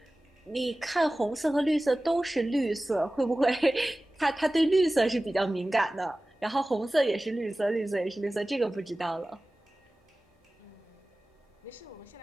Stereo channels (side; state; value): both; normal; correlation 0.97